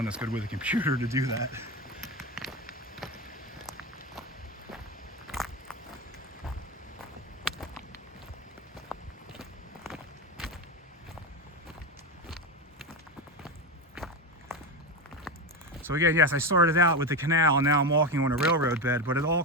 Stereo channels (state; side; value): normal; both; correlation 0.16